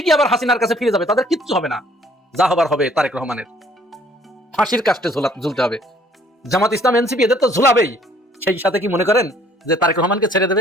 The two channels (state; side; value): normal; both; correlation 0.60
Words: আবার হাসিনার কাছে ফিরে যাবে, তাদের কিচ্ছু হবে না। যা হবার হবে তারেক রহমানের, ফাঁসির কাস্টে ঝুলতে হবে। জামাত ইসলাম, এনসিপি এদের তো ঝুলাবেই, সেই সাথে কি মনে করেন যে তারেক রহমানকে ছেড়ে